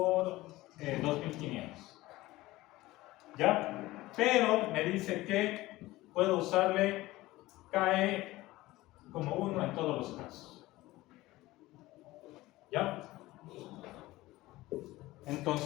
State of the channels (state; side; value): quieter; right; 18.3 dB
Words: 2500, ¿ya? Pero me dice que puedo usarle KE como 1 en todos los casos. ¿Ya?